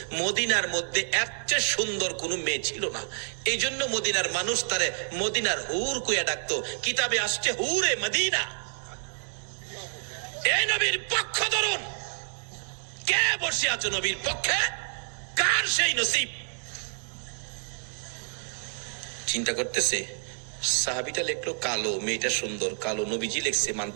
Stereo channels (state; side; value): silent; left; 59 dB below the other